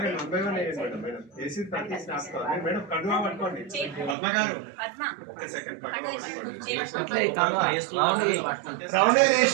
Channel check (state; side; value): drops out; left; at 4.2 s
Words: మేడం కడువా పట్టుకోండి. పద్మ గారు